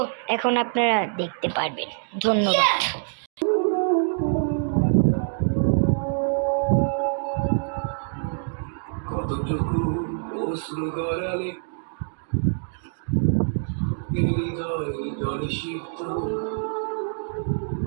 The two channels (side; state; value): left; silent; digital silence